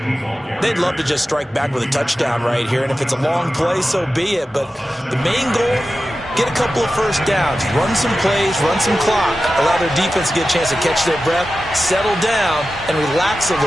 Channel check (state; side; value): normal; both; correlation 0.93